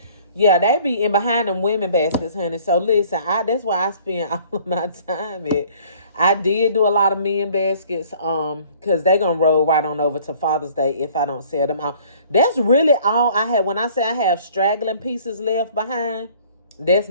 Yeah, they be in behind them women baskets, honey. So listen, that's why I spend all of my time at. I did do a lot of men baskets, because they gonna roll right on over to Father's Day if I don't sell them out. That's really all I have. When I say I have straggling pieces left behind, that's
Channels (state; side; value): inverted; both; correlation -0.54